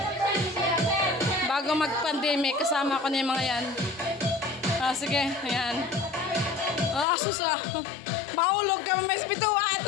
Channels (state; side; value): drops out; right; at 7.1 s